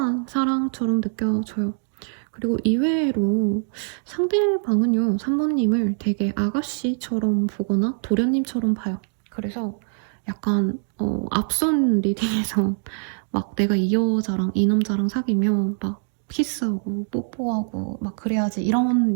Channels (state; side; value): silent; left; digital silence